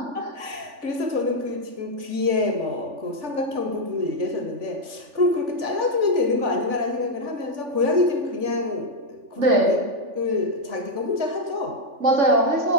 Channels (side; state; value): left; late; 3.5 ms